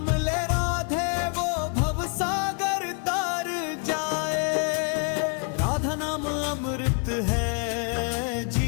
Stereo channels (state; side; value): quieter; right; 38.4 dB